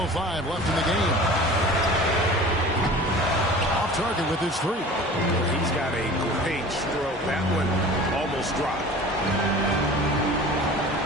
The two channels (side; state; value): both; normal; correlation 0.41